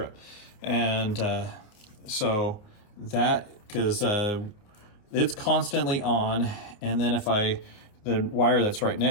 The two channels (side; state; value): right; late; 29 ms